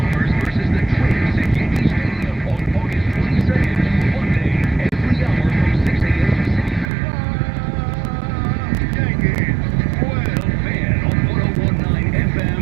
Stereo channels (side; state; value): left; drops out; at 6.9 s